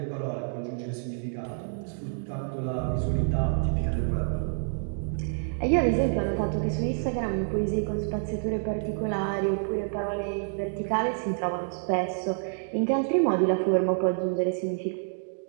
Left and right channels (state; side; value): silent; left; digital silence